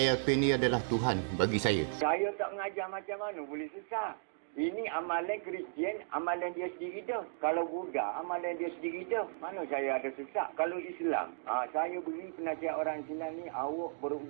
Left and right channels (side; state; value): left; silent; digital silence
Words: Pin ni adalah Tuhan bagi saya. Saya tak mengajar macam mana boleh sesat. Ini amalan Kristian, amalan dia sendiri dah. Kalau Buddha, amalan dia sendiri dah. Mana saya ada sesat? Kalau Islam, saya beri penasihat orang Islam ni, awak